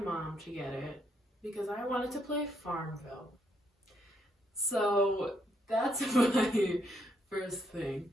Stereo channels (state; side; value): normal; both; correlation 0.74